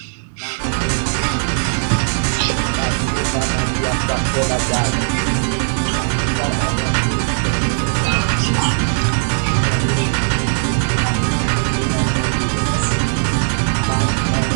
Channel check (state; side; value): silent; left; digital silence